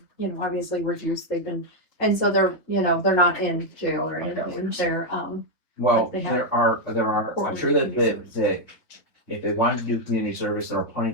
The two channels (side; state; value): right; late; 3.5 ms